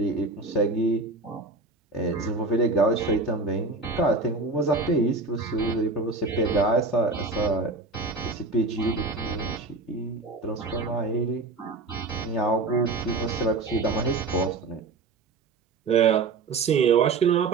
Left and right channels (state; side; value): quieter; left; 3.7 dB